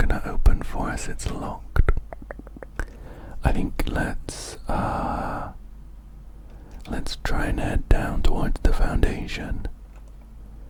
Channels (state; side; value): identical; both; correlation 1.00